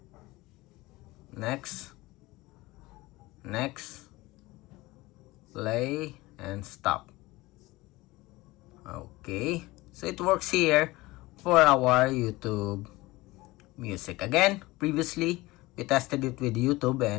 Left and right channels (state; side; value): quieter; right; 20.3 dB